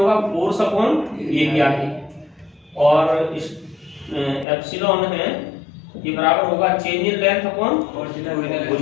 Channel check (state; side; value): drops out; right; at 4.5 s